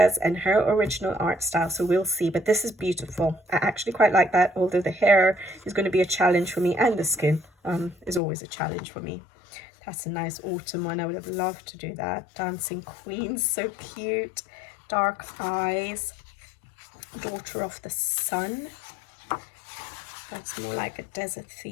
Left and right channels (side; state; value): right; drops out; at 8.2 s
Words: and her original art style. So we'll see, but this is beautiful. I actually quite like that, although the hair is going to be a challenge for me, and the skin is always a challenge for me. That's a nice autumn one. I would have loved to do that. Dancing Queen, so cute. Dark eyes. Daughter of the Sun. That's more like a desert